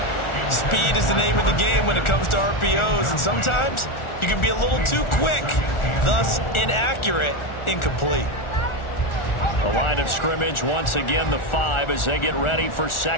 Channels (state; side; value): late; right; 1.4 ms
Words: Speed is the name of the game when it comes to RPOs, and sometimes you can be a little too quick, thus inaccurate, incomplete. The line of scrimmage, once again, the 5 as they get ready for